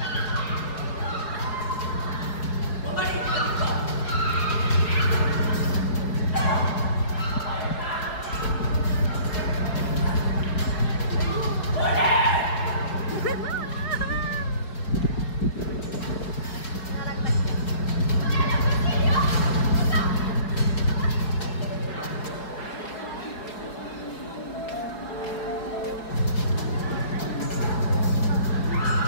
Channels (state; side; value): late; right; 4.6 ms